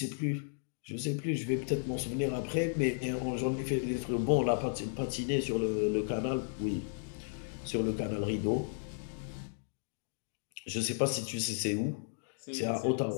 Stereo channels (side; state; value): right; silent; digital silence